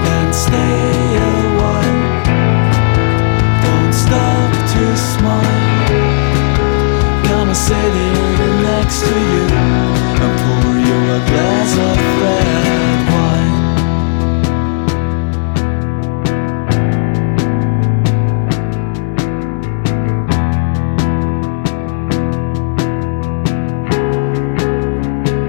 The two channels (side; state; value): right; silent; digital silence